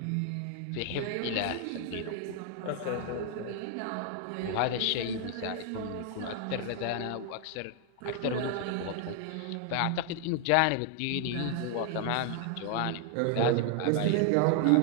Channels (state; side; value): different; both; correlation 0.00